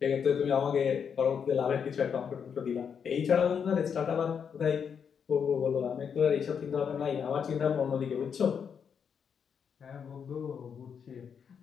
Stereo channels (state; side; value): quieter; right; 7.1 dB